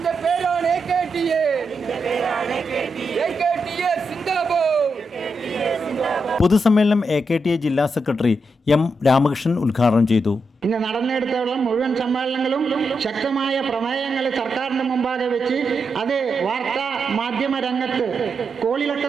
പേരാണ് AKTA സിന്ദാബാദ്. പൊതുസമ്മേളനം AKTA ജില്ലാ സെക്രട്ടറി M. രാമകൃഷ്ണൻ ഉദ്ഘാടനം ചെയ്തു. ഇന്ന് നടന്നെടുത്തോളം മുഴുവൻ സമ്മേളനങ്ങളും ശക്തമായ പ്രമേയങ്ങൾ സർക്കാരിന്റെ മുമ്പാകെ വെച്ച് അത് വാർത്താ മാധ്യമ രംഗത്ത് കോളിളക്കം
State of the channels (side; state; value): both; normal; correlation 0.84